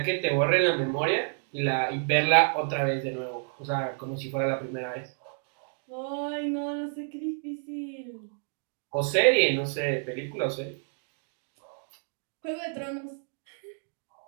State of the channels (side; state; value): left; silent; 58 dB below the other